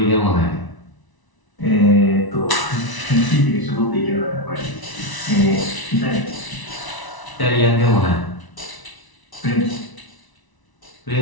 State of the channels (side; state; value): right; late; 1.0 ms